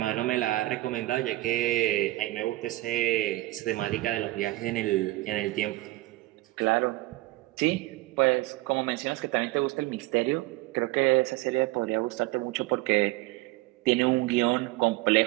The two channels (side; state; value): left; quieter; 19.2 dB